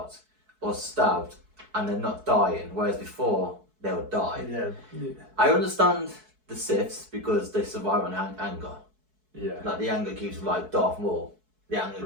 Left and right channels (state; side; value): late; left; 4.6 ms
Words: or stabbed and they're not dying, whereas before they would die. Yeah. I understand the Siths because they survive on anger. Yeah. Like the anger keeps them like Darth Maul. The anger